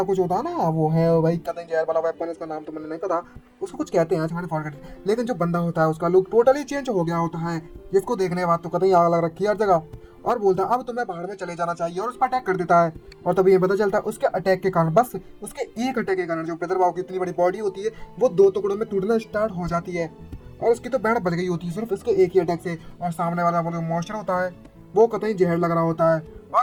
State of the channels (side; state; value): both; identical; correlation 1.00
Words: कुछ होता है ना वो है भाई कतई जहर वाला वेपन, इसका नाम तो मैंने नहीं पता, उसको कुछ कहते हैं मैंने फॉरगेट। लेकिन जो बंदा होता है उसका लुक टोटली चेंज हो गया होता है, जिसको देखने के बाद तो कतई आग लग रखी है हर जगह। और बोलता है अब तुम्हें बाहर में चले जाना चाहिए और उस पर अटैक कर देता है। और तभी ये पता चलता है उसके अटैक के कारण, बस उसके एक अटैक के कारण जो ब्रदर भाव की इतनी बड़ी बॉडी होती है वो 2 टुकड़ों में टूटना स्टार्ट हो जाती है और उसकी तो बैंड बच गई होती है सिर्फ इसके एक ही अटैक से। और सामने वाला वो जो मॉन्स्टर होता है वो कतई जहर लग रहा होता है